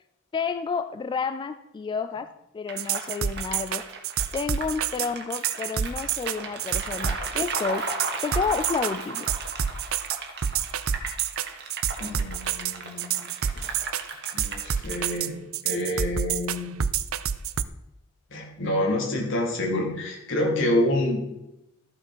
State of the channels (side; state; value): both; normal; correlation 0.32